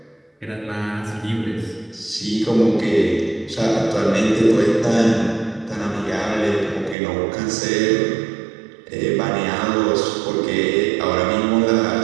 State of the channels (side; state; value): left; drops out; at 7.0 s